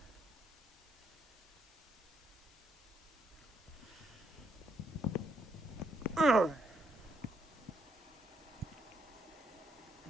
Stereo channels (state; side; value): normal; both; correlation 0.75